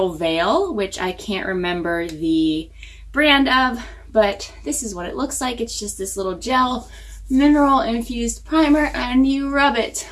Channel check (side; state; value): both; identical; correlation 1.00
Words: Veil, which I can't remember the brand of, but this is what it looks like. It's just this little gel mineral infused primer, and you rub it